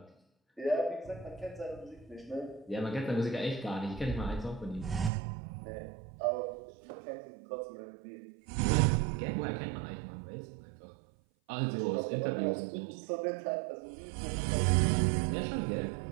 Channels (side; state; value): left; drops out; at 5.1 s